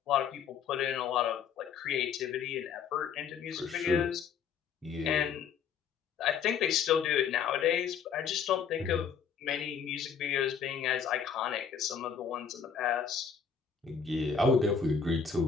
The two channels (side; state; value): right; quieter; 6.8 dB